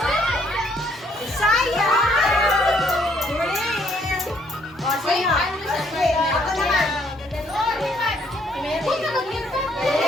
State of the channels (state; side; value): normal; both; correlation 0.67